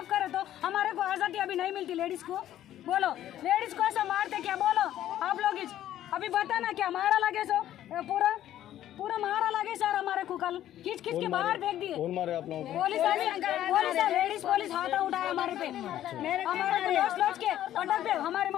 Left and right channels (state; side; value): quieter; right; 12.3 dB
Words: करे तो हमारे को आजादी अभी नहीं मिलती। लेडीज को बोलो, लेडीज को ऐसा मारते क्या, बोलो आप लोग अभी बताना क्या मारा लगे सो पूरा मारा लगे सर हमारे को, कल खींच के बाहर फेंक दिए। कौन मारे आप लोगों को? पुलिस लेडीज पुलिस हाथ उठाया हमारे पे, हमारे को लोच के पटक पे हमारी